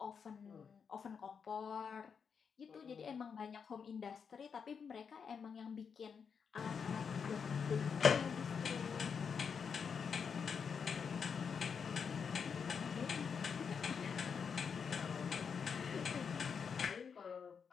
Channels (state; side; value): quieter; right; 6.4 dB